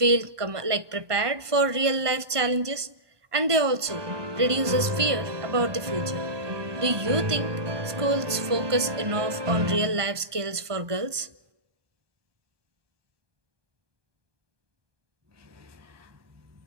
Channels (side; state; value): left; late; 1.2 ms